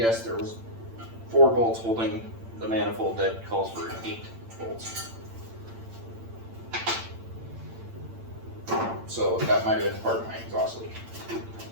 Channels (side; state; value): left; late; 8.9 ms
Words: there was 4 bolts holding the manifold that calls for 8 bolts. So that might have been part of my exhaust leak.